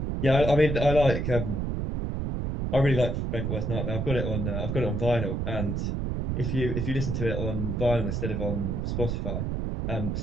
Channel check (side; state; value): right; noise; rumble, 1 dB below the sound